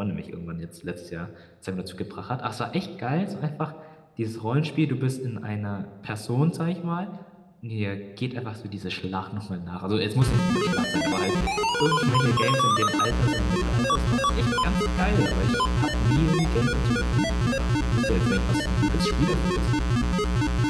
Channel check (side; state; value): both; identical; correlation 1.00